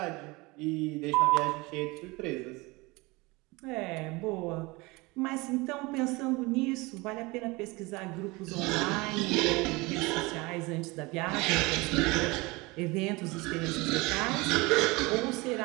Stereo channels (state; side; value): quieter; left; 24.0 dB